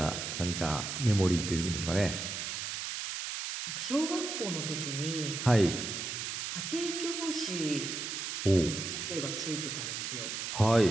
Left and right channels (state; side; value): noise; right; hiss, 4 dB below the sound